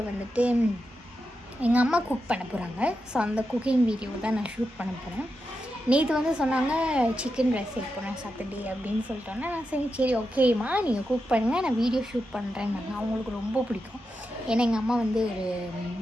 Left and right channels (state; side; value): normal; both; correlation 0.88